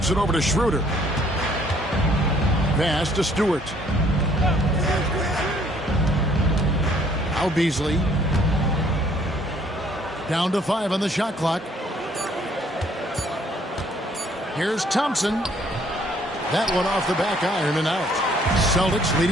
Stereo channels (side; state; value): both; normal; correlation 0.62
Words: it over to Schroeder. Pass to Stewart. Now Beasley. Down to 5 on the shot clock. Here's Thompson. That one off the back iron and out. Celtics